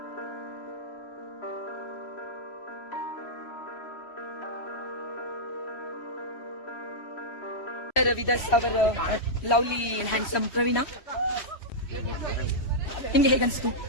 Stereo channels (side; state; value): right; late; 3.1 ms